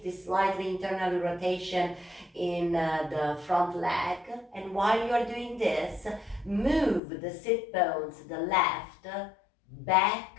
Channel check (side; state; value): right; drops out; at 7.0 s